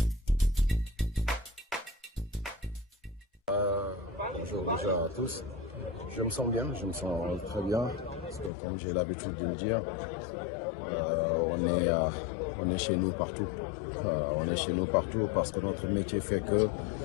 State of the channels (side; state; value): right; drops out; at 8.5 s